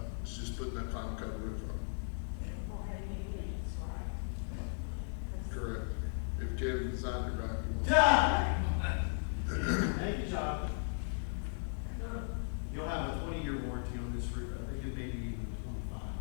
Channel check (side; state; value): right; silent; 53 dB below the other